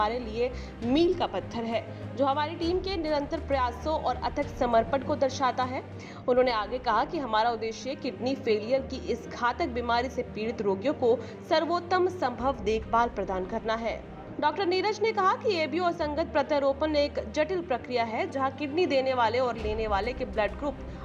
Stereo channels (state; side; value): identical; both; correlation 1.00